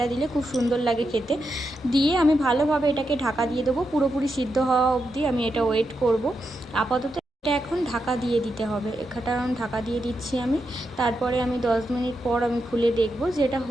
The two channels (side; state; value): both; normal; correlation 0.85